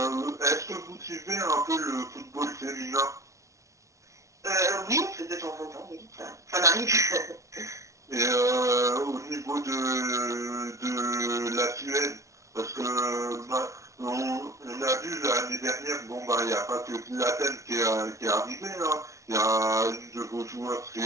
Est-ce que vous suivez un peu le football féminin? Oui, de temps en temps, oui, ça m'arrive. Et au niveau de la Suède, parce que on a vu l'année dernière, il n'y a pas que Zlatan qui est arrivé, hein. Il y a une de vos joueurs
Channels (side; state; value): left; late; 0.15 ms